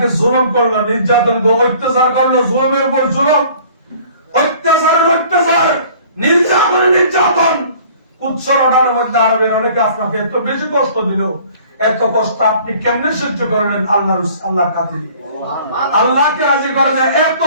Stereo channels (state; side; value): inverted; both; correlation -0.52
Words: জুলুম করলো, নির্যাতন করলো, অত্যাচার করলো, জুলুমের উপর জুলুম, অত্যাচারের অত্যাচার, নির্যাতনের নির্যাতন, উচ্চরণার মধ্যে আরবের অনেকে আপনাকে এত বেশি কষ্ট দিল। এত কষ্ট আপনি কেমনে সহ্য করলেন? আল্লাহর খাতিরে, আল্লাহকে রাজি করেন। এত